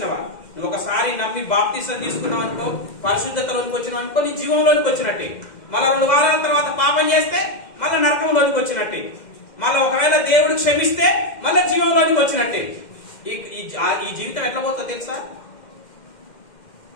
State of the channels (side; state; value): right; late; 2.1 ms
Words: నువ్వు ఒకసారి నమ్మి బాప్తిసం తీసుకున్నావు అనుకో, పరిశుద్ధతలోకి వచ్చినావు అనుకో, నీ జీవంలోకి వచ్చినట్టే. మళ్ళీ 2 వారాల తర్వాత పాపం చేస్తే మళ్ళీ నరకంలోకి వచ్చినట్టే. మళ్ళీ ఒకవేళ దేవుడు క్షమిస్తే మళ్ళీ జీవంలోకి వచ్చినట్టే. ఈ జీవితం ఎట్లా పోతుందో తెలుసా?